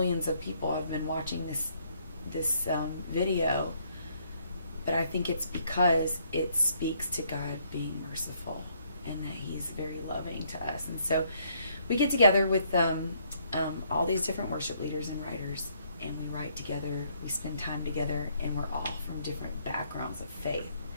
of people have been watching this video. But I think it's because it speaks to God being merciful and that He's very loving to us. And so we get together with all these different worship leaders and writers, and we write together, we spend time together, and we're all from different backgrounds of faith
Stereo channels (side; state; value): both; inverted; correlation -0.68